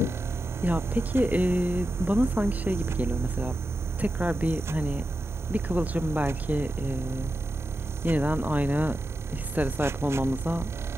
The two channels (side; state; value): both; normal; correlation 0.90